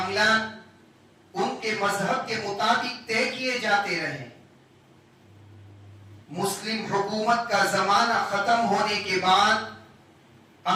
ان کے مذہب کے مطابق طے کیے جاتے رہے۔ مسلم حکومت کا زمانہ ختم ہونے کے بعد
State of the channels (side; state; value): both; identical; correlation 1.00